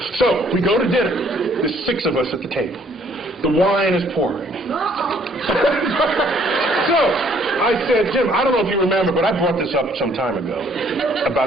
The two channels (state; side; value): normal; both; correlation 0.62